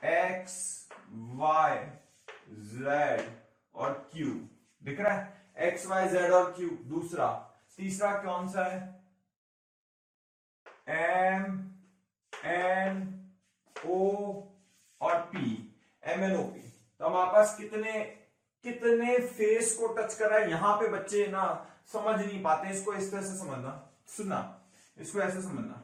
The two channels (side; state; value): both; identical; correlation 1.00